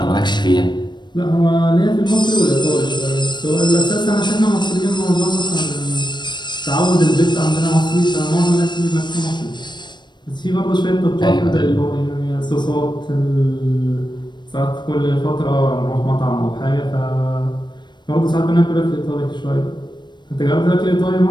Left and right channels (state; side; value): late; right; 0.22 ms